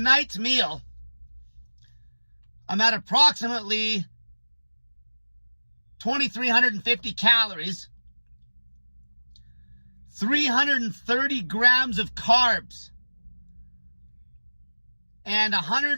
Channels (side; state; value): both; inverted; correlation -1.00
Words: meal, I'm at approximately 2,350 calories, 330 grams of carbs, and